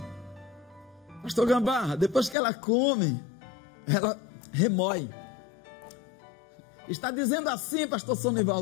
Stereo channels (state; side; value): drops out; right; at 2.4 s